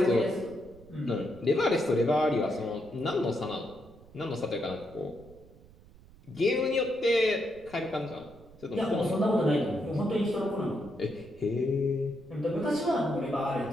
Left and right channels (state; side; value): noise; right; rumble, 23 dB below the sound